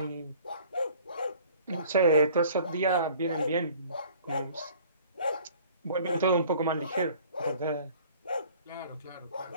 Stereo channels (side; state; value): both; inverted; correlation -0.51